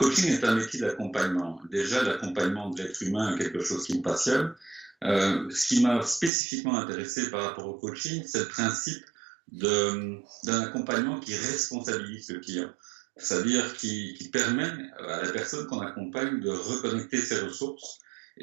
est un métier d'accompagnement. Déjà, l'accompagnement de l'être humain est quelque chose qui me passionne. Ce qui m'a spécifiquement intéressé par rapport au coaching, c'est le principe d'un accompagnement qui responsabilise le client. C'est-à-dire qui permet à la personne qu'on accompagne de reconnecter ses ressources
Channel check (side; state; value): left; drops out; at 6.3 s